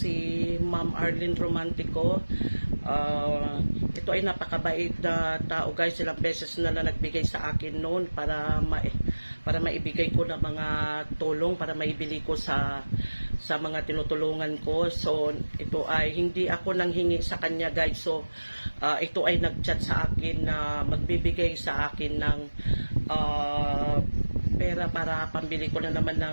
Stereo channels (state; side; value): inverted; both; correlation -1.00